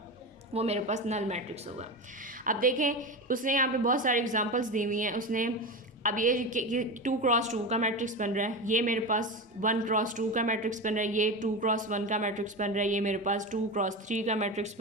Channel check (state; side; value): normal; both; correlation 0.21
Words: वो मेरे पास नल मैट्रिक्स होगा। अब देखें उसने यहाँ पे बहुत सारे एग्जांपल्स दी हुई हैं। उसने अब ये 2x2 का मैट्रिक्स बन रहा है, ये मेरे पास 1x2 का मैट्रिक्स बन रहा है, ये 2x1 का मैट्रिक्स बन रहा है, ये मेरे पास 2x3 का मैट्रिक्स